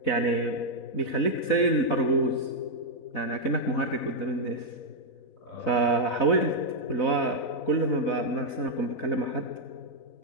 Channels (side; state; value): right; late; 4.0 ms